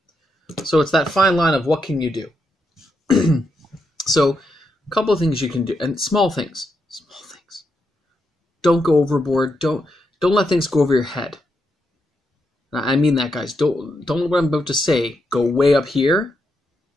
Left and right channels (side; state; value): both; normal; correlation 0.82